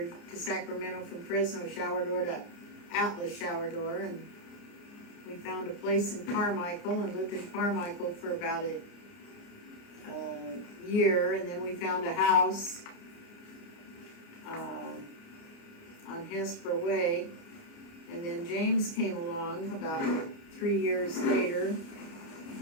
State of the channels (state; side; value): late; right; 29 ms